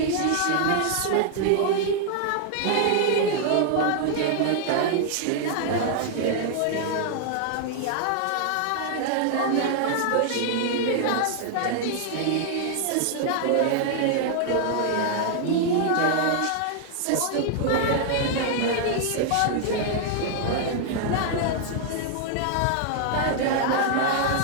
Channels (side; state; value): both; different; correlation -0.01